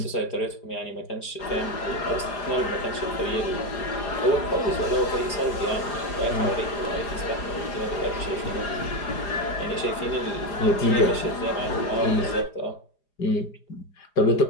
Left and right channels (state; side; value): late; right; 4.9 ms